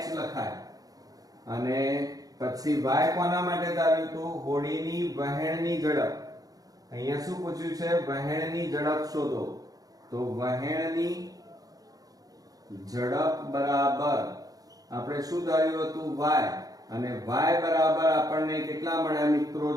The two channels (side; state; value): left; late; 0.18 ms